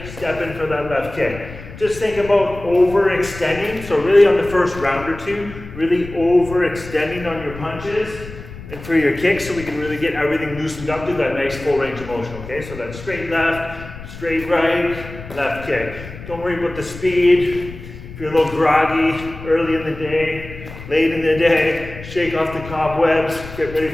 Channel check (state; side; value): noise; left; rumble, 14 dB below the sound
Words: step in for that left kick. Just think about overextending. So really on the first round or two, really overextending on your punches and for your kicks, so we can really get everything loosened up to that nice full range of motion, okay? So that straight left, straight right, left kick. Don't worry about the speed. If you're a little groggy early in the day, late in the day, shake off the cobwebs, get ready